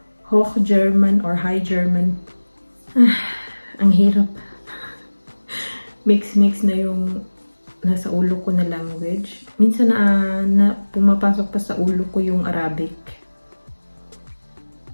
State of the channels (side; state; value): both; inverted; correlation -1.00